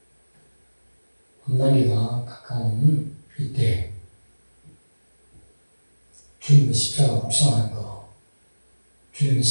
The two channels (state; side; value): inverted; both; correlation -1.00